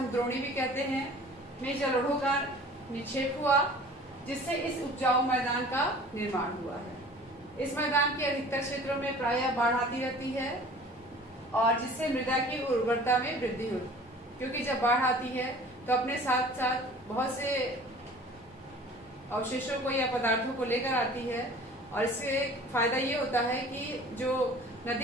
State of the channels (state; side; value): normal; both; correlation 0.46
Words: द्रोणी भी कहते हैं, में जलोढ़ों का निक्षेप हुआ, जिससे इस उपजाऊ मैदान का निर्माण हुआ है। इस मैदान के अधिकतर क्षेत्रों में प्रायः बाढ़ आती रहती है और जिससे मृदा की उर्वरता में वृद्धि होती है, क्योंकि जब बाढ़ आती है तो अपने साथ साथ बहुत से अवशेषों को या पदार्थों को लेकर आती है, और इससे फायदा ये होता है कि जो